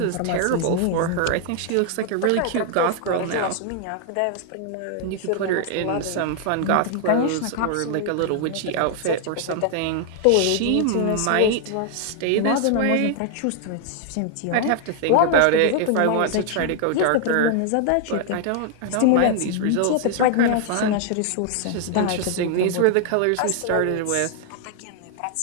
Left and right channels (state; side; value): different; both; correlation 0.00